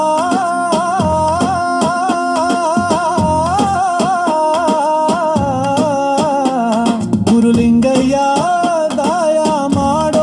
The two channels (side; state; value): both; identical; correlation 1.00